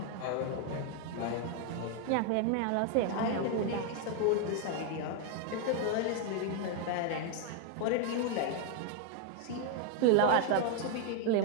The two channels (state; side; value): different; both; correlation 0.01